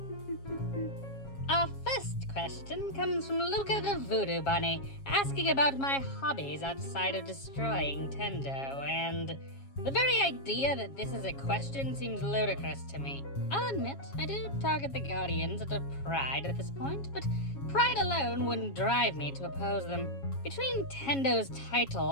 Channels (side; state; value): right; late; 7.3 ms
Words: Our first question comes from Luca the Voodoo Bunny, asking about my hobbies outside of destroying Tendo, and the very idea that this is a question seems ludicrous to me. I'll admit, I do target the Guardians out of pride at this point, but pride alone wouldn't drive me to oppose them. Between Tendo's title